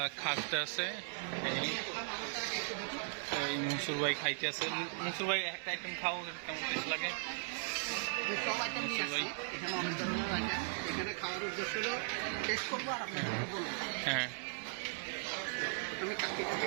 খাটতে আছে। এই মনসুর ভাই খাইতে আছে। মনসুর ভাই একটা আইটেম খাও, কেমন টেস্ট লাগে? সব আইটেম নিয়ে আসছি, এখানে অনেক ধরনের আইটেম। এখানে খাওয়ার উদ্দেশ্য হলো টেস্ট করবো আর আপনাদেরকে বলবো। হ্যাঁ আমি কাকিটা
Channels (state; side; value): silent; left; 52 dB below the other